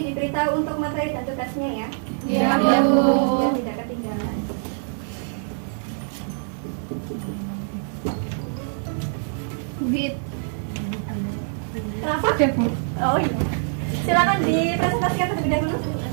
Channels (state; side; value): silent; left; 62 dB below the other